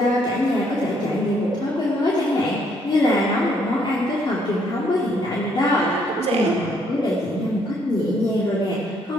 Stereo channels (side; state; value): both; normal; correlation 0.69